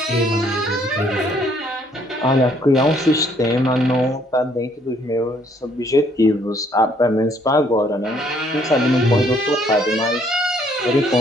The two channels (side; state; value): both; normal; correlation 0.65